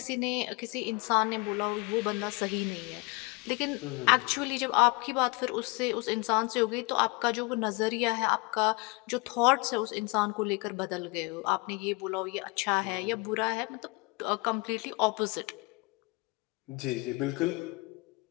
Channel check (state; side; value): quieter; right; 27.5 dB